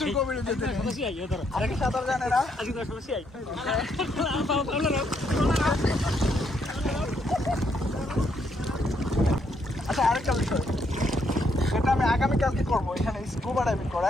গভীরে যেতে নেই। আগে সাঁতার জানে না। আচ্ছা, আরেকটা বিষয়, সেটা আমি আগামীকালকে করবো। এখানে স্কুবা ডাইভিং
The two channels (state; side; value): normal; both; correlation 0.74